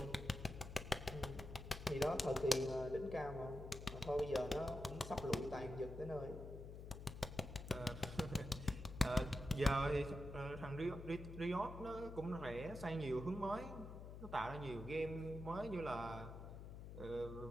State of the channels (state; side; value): noise; left; hum, 10 dB below the sound